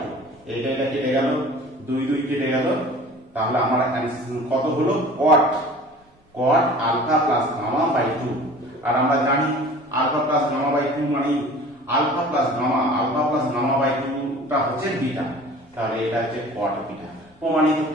2। এটা কেটে গেল, 2 2 কেটে গেল, তাহলে আমার কত হলো cot alpha plus gamma by 2। আর আমরা জানি আলফা প্লাস গামা বাই 2 মানে আলফা প্লাস গামা বাই 2 টা হচ্ছে বিটা, তাহলে এটা হচ্ছে cot বিটা, প্রমাণিত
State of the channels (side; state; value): both; normal; correlation 0.44